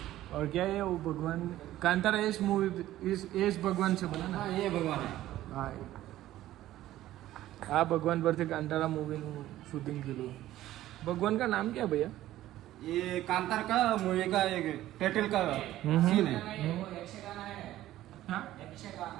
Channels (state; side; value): quieter; left; 14.3 dB